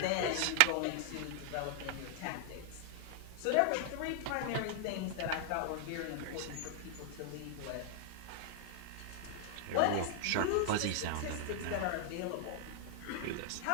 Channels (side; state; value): both; different; correlation 0.00